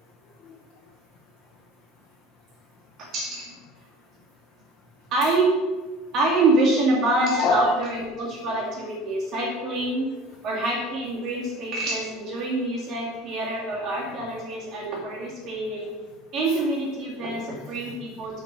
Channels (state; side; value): normal; both; correlation 0.42